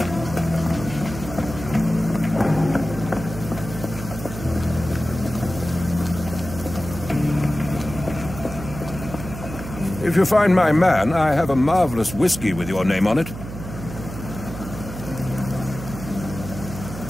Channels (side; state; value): right; noise; hum, 10 dB below the sound